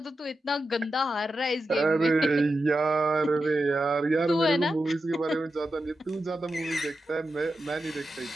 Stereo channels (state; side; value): normal; both; correlation 0.90